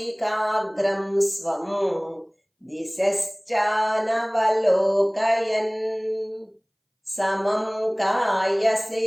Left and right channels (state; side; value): identical; both; correlation 1.00